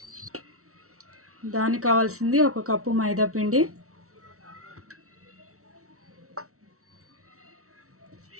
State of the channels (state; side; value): late; left; 0.64 ms